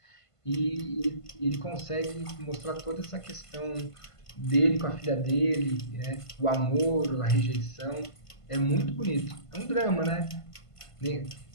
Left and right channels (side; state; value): right; late; 1.5 ms